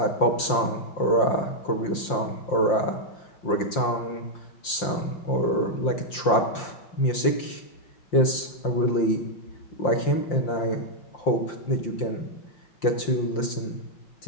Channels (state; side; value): late; right; 5.7 ms